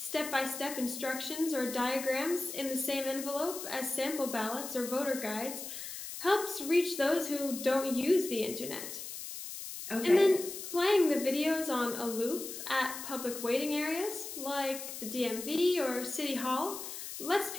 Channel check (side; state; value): left; noise; hiss, 9 dB below the sound